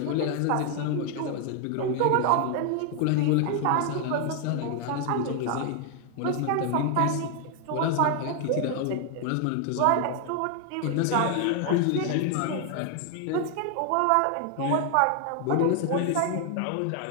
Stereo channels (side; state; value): both; different; correlation 0.00